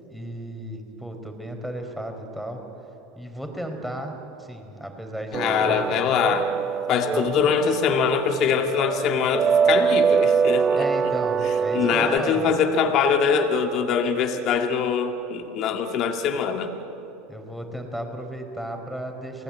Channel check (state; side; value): normal; both; correlation 0.53